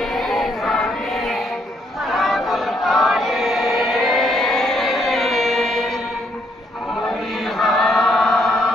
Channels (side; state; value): both; normal; correlation 0.72